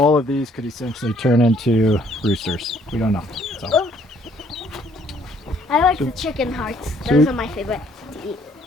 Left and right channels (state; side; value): normal; both; correlation 0.63